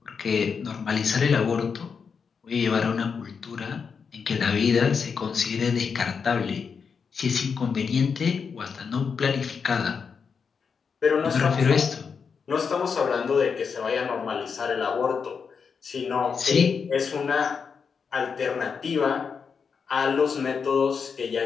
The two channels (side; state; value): right; quieter; 5.9 dB